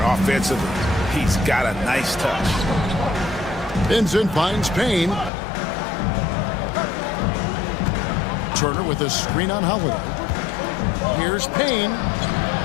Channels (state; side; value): drops out; right; at 5.3 s